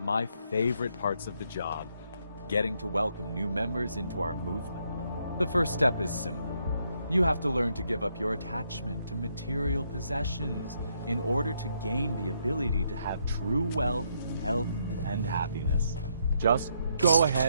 my favorite parts of the job, getting to welcome new members into our movement. The first step is simple. You have to learn to give up your attachment to material possessions in order to gain the ability to have true wealth, health, and happiness. Just go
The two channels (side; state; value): both; inverted; correlation -0.75